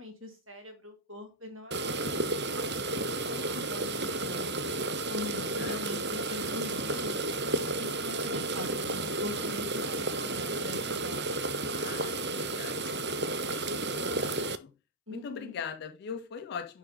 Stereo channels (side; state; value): both; normal; correlation -0.06